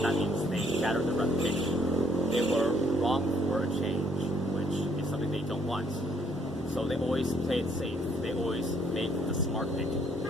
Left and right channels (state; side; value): normal; both; correlation 0.65